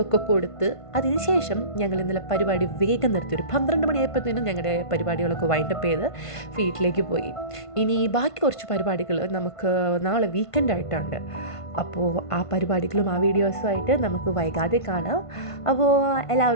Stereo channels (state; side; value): late; right; 1.5 ms